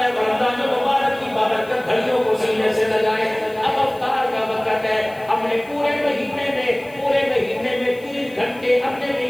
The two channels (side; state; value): left; noise; hiss, 25 dB below the sound